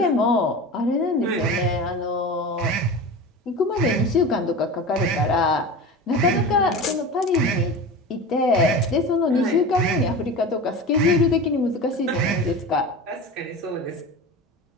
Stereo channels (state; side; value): normal; both; correlation 0.31